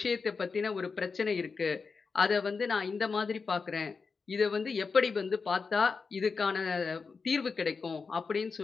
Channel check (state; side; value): quieter; right; 4.8 dB